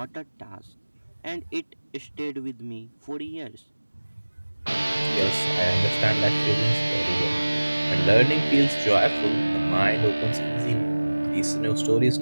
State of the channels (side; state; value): both; inverted; correlation -1.00